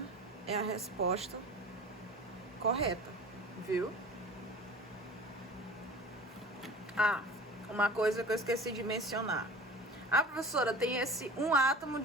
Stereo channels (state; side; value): normal; both; correlation 0.40